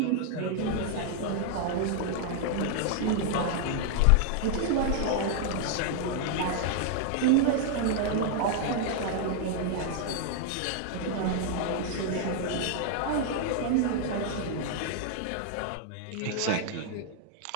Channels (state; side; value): different; both; correlation 0.00